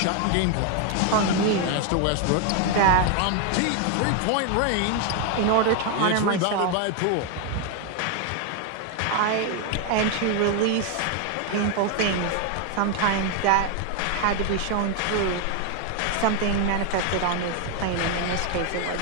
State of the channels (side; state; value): both; different; correlation 0.01